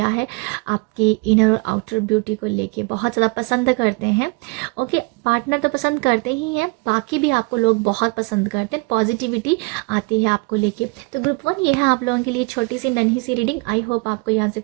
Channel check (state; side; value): quieter; left; 28.9 dB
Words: है, आपकी इनर और आउटर ब्यूटी को लेके बहुत ज़्यादा पसंद करते हैं। ओके, पार्टनर तो पसंद करते ही हैं, बाकी भी आपको लोग बहुत पसंद करते हैं, पॉजिटिविटी आती है आपको लेके। तो ग्रुप 1 ये है आप लोगों के लिए छोटी सी नन्ही सी रीडिंग। आई होप आपको यहाँ से